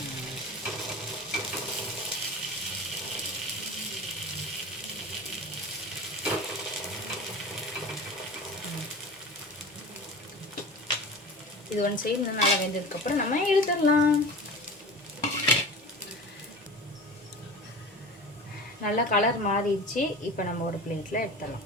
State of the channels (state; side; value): normal; both; correlation 0.34